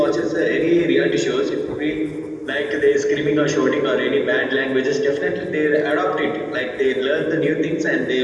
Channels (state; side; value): identical; both; correlation 1.00